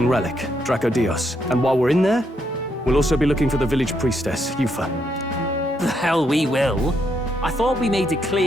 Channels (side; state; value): both; normal; correlation 0.77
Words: relic, Dracodios. And while we're in there, we'll also be looking for the village priestess, Yufa. The hell we will. I thought we made it